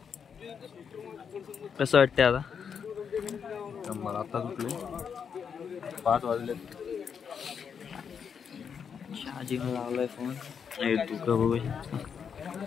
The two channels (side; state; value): right; quieter; 6.9 dB